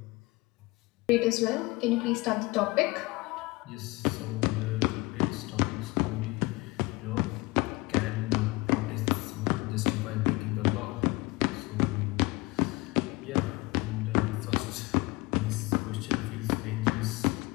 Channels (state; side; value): quieter; right; 23.0 dB